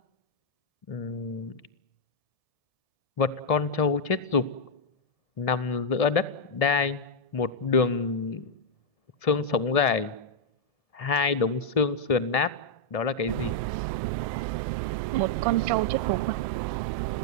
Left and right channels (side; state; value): right; late; 1.7 ms